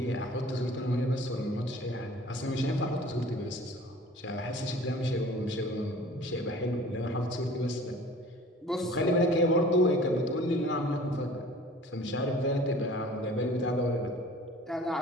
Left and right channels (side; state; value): both; normal; correlation 0.47